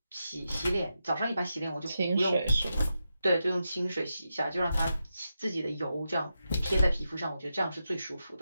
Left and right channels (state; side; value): inverted; both; correlation -0.88